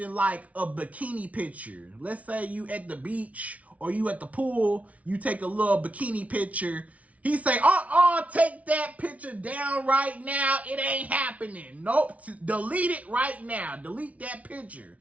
like a bikini picture. Let's say you at the beach or you at the pool, you take a little bikini picture. He say, take that picture down right now. It ain't happening. Nope, delete it right now. Delete that picture.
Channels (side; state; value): left; late; 0.067 ms